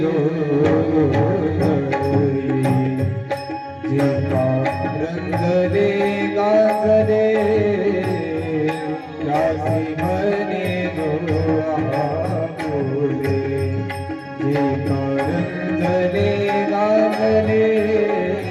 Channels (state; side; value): identical; both; correlation 1.00